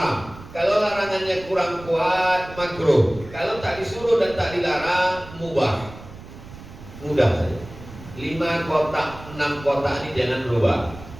Kalau larangannya kurang kuat, makruh. Kalau tak disuruh dan tak dilarang, mubah. Mudah saja. 5 kotak, 6 kotak ini jangan berubah.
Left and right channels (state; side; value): noise; right; rumble, 16 dB below the sound